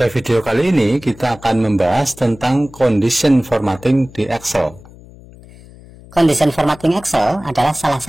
video kali ini kita akan membahas tentang condition formatting di Excel. Condition formatting Excel adalah salah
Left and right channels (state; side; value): noise; left; hum, 21 dB below the sound